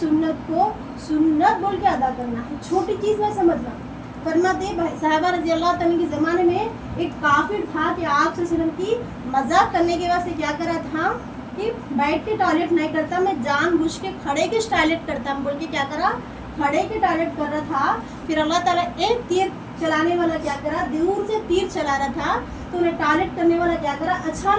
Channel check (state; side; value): identical; both; correlation 1.00